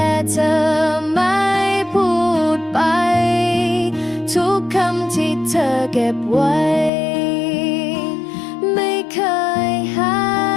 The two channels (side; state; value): right; drops out; at 6.9 s